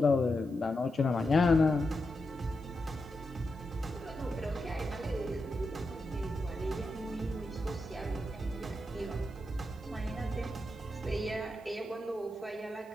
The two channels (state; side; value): normal; both; correlation 0.87